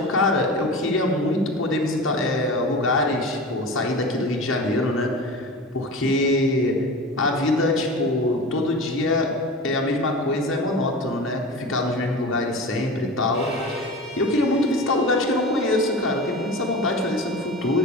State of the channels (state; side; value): normal; both; correlation 0.32